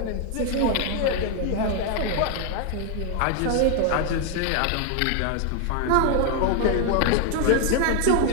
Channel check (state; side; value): different; both; correlation 0.01